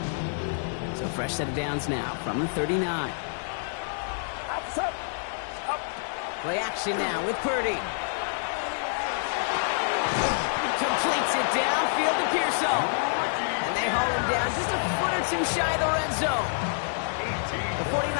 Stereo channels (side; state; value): right; silent; digital silence